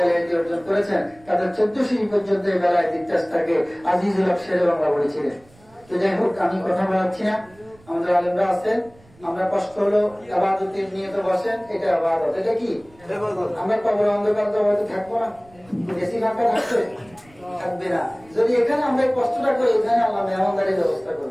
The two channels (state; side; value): noise; right; rumble, 27 dB below the sound